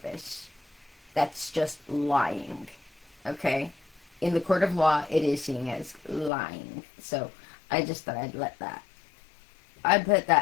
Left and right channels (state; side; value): drops out; right; at 6.3 s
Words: That's just lying. Okay? In the court of law, it is seen as lying. So I just thought I'd put